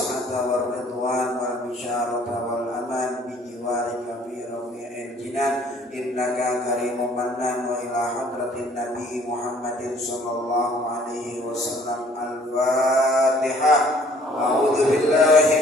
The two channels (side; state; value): both; normal; correlation 0.58